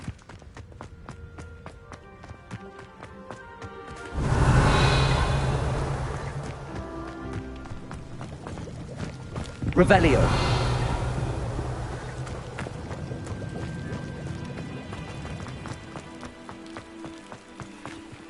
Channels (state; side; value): identical; both; correlation 1.00